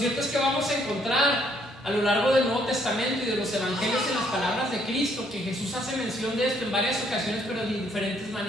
es que vamos a encontrar a lo largo del Nuevo Testamento y de los Evangelios, en las palabras de Cristo, que Jesús hace mención de esto en varias ocasiones, pero de diferentes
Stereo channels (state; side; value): normal; both; correlation 0.68